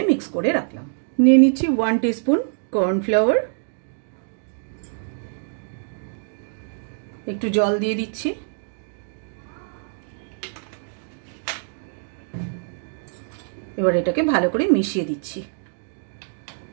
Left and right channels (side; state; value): left; silent; 62 dB below the other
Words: মিক্স করে রাখলাম। নিয়ে নিচ্ছি 1 টিস্পুন কর্নফ্লাওয়ার, একটু জল দিয়ে দিচ্ছি, এবার এটাকে ভালো করে মিশিয়ে দিচ্ছি।